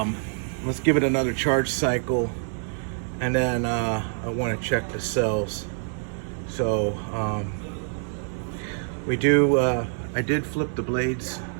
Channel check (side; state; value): left; silent; 61 dB below the other